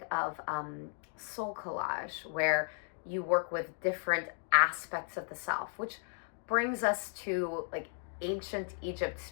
of soul collage, where you work with different aspects of the self, which brings us to like ancient Egypt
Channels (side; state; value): right; silent; 54 dB below the other